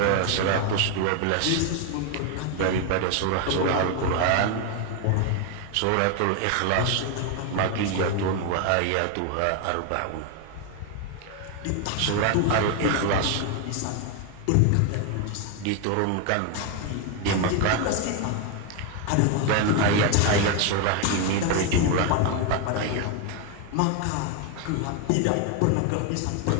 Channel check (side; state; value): both; different; correlation 0.01